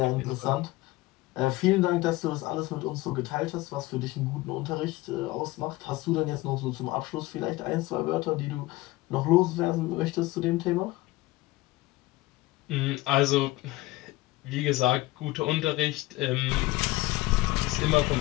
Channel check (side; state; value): right; quieter; 18.9 dB